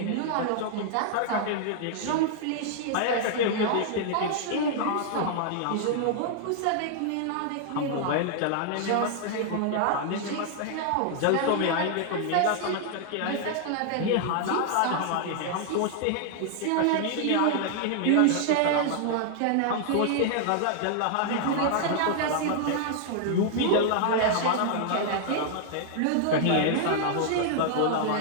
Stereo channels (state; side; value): different; both; correlation 0.00